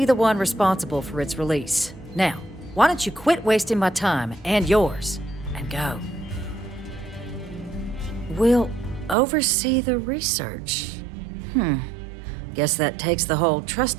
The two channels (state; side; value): drops out; left; at 9.2 s